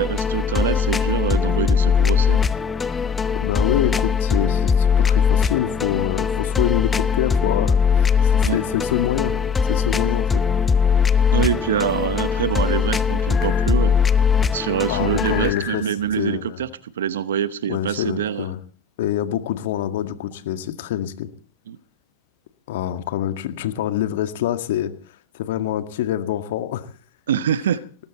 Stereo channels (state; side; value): quieter; right; 4.3 dB